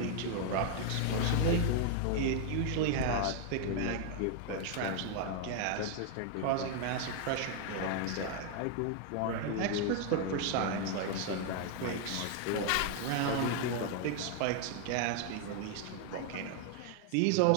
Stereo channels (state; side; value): different; both; correlation 0.00